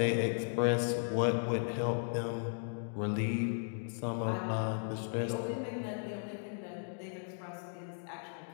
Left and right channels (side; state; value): right; silent; digital silence